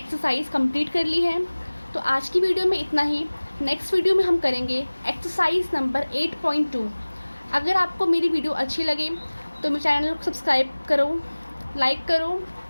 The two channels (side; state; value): both; inverted; correlation -1.00